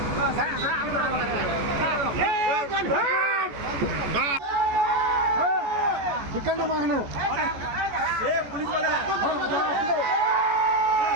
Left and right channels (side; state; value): left; late; 14 ms